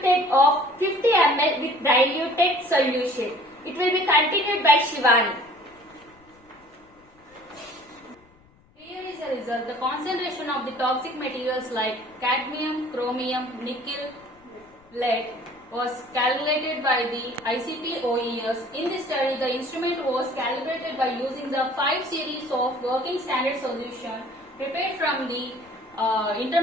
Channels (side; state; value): left; noise; rumble, 30 dB below the sound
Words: of 50 ml with diluted solution. It will be continued by Shivani. Here is the result. The concentration of the toxic materials like cadmium, chromium, nickel, lead was calculated by the ICP OES. In this study, the instrument was calibrated by using the 5 series of working standard solution prepared from the